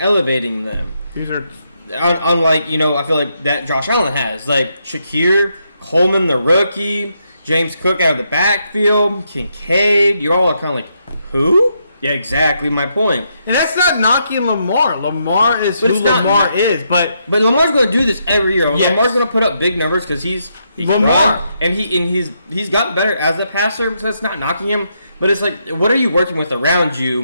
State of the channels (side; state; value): both; inverted; correlation -0.79